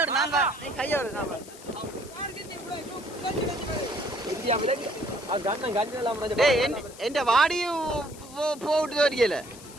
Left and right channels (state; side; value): noise; left; hiss, 18 dB below the sound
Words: நான் தான். நீ கையை விடு. என் வாடியும் போட்டு வரைக்கல.